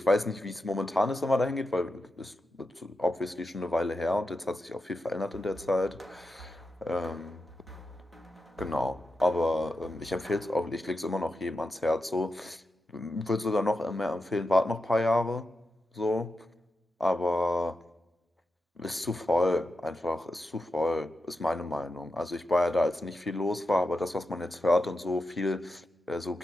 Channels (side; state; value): both; normal; correlation 0.89